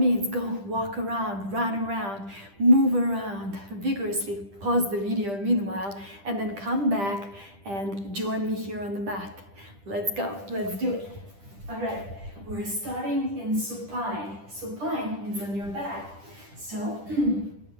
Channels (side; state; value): left; late; 10 ms